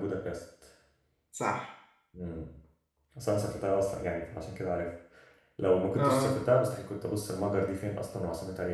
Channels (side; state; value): both; identical; correlation 1.00